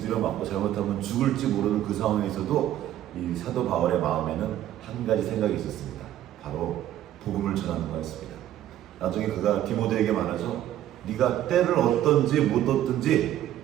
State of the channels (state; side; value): quieter; left; 12.3 dB